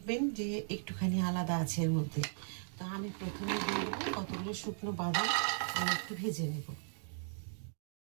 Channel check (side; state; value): left; silent; digital silence